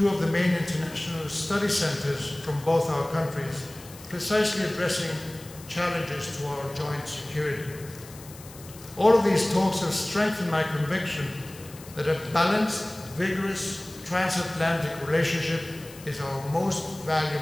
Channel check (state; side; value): noise; left; hiss, 19 dB below the sound